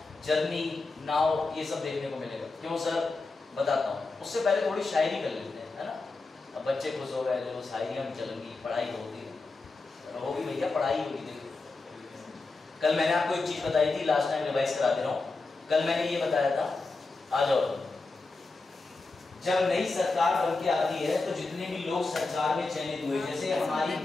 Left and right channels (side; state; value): right; quieter; 3.6 dB